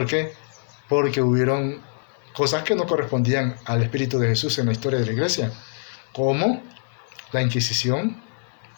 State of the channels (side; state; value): right; silent; digital silence